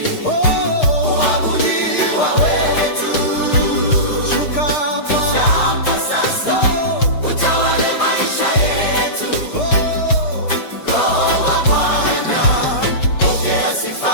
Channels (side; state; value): right; late; 6.5 ms